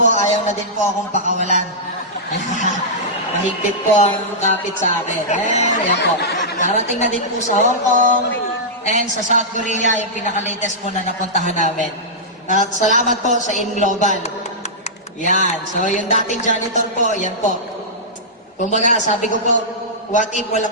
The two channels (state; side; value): normal; both; correlation -0.13